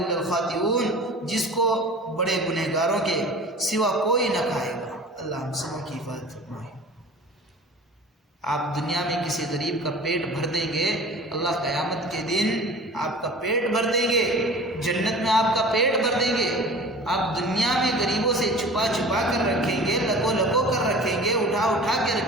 الخاطئون، جس کو بڑے گنہگاروں کے سوا کوئی نہ کھائے گا. اللہ ہم سب کی حفاظت فرمائے. آپ دنیا میں کسی غریب کا پیٹ بھر دیں گے، اللہ قیامت کے دن آپ کا پیٹ بھر دیں گے، جنت میں آپ کا پیٹ بھر دیں گے. آپ دنیا میں غریبوں سے چھپا چھپا کر رکھیں گے، لکو لکو کر رکھیں گے، اٹھا اٹھا کے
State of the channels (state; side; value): normal; both; correlation 0.40